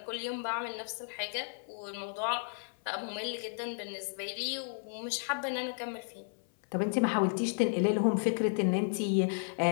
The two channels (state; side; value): silent; right; 56 dB below the other